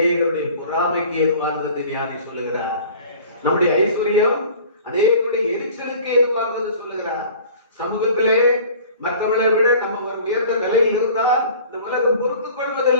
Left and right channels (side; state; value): both; inverted; correlation -0.46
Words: பொறாமைக்கு ஏதுவானது ஞானி சொல்லுகிறார். நம்முடைய ஐஸ்வர்யம் அநேகருடைய எரிச்சலுக்கு ஏதுவானது சொல்லுகிறார். சமூகத்திலே மற்றவர்களை விட நம்ம ஒரு உயர்ந்த நிலையில் இருந்தால் இந்த உலகம் பொறுத்துக்